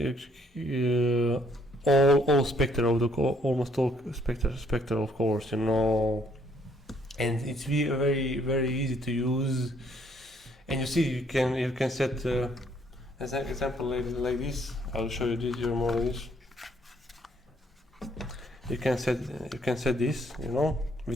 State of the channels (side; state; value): both; normal; correlation 0.67